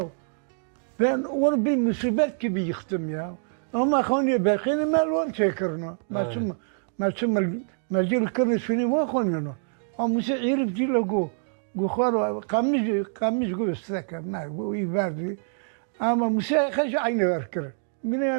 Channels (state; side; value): silent; left; digital silence